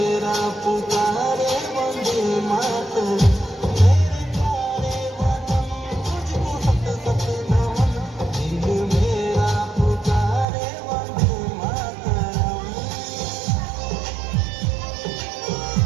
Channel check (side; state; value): left; drops out; at 10.5 s